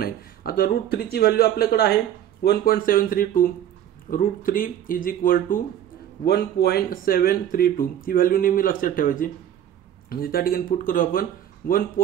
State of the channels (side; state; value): left; quieter; 10.7 dB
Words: आता √3 ची व्हॅल्यू आपल्याकडे आहे 1.732 √3 इज इक्वल टू 1.732 ही व्हॅल्यू नेहमी लक्षात ठेवायची म्हणजे त्या ठिकाणी पुट करू आपण